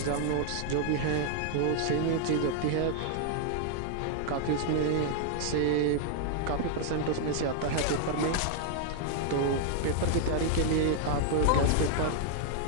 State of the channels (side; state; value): both; different; correlation 0.00